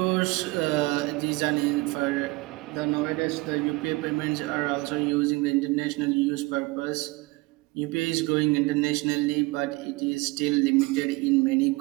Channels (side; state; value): left; quieter; 23.7 dB